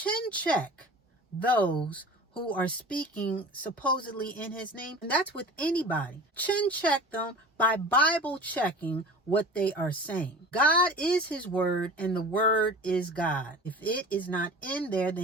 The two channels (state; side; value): normal; both; correlation 0.38